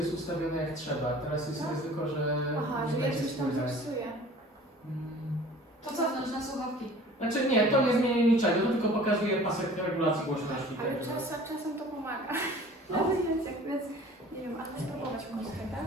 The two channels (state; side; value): normal; both; correlation 0.47